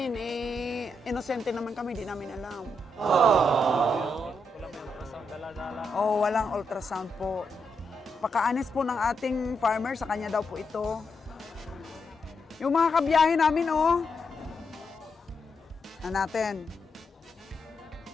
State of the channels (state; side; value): normal; both; correlation 0.82